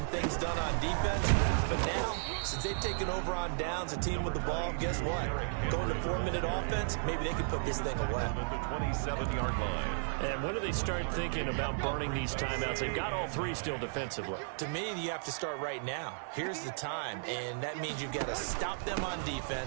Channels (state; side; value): silent; left; digital silence